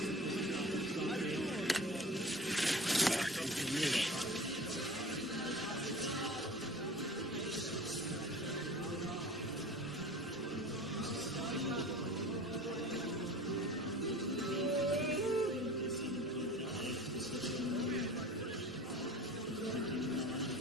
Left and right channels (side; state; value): both; normal; correlation 0.39